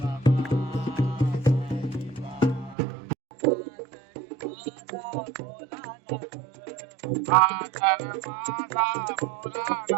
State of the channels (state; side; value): drops out; left; at 2.8 s